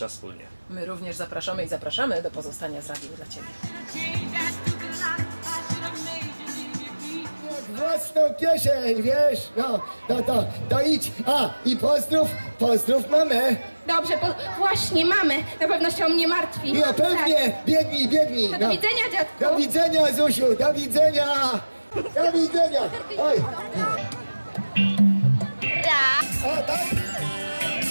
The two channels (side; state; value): both; inverted; correlation -1.00